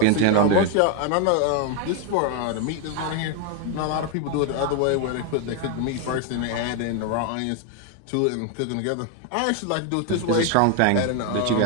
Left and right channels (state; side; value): different; both; correlation 0.01